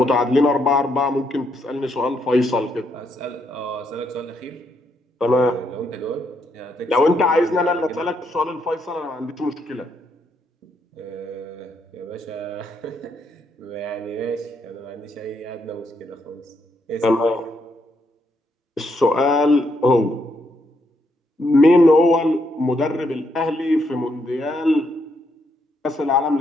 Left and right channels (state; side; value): normal; both; correlation 0.76